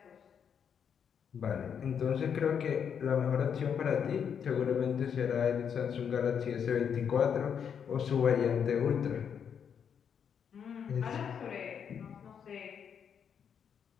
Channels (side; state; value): right; quieter; 7.6 dB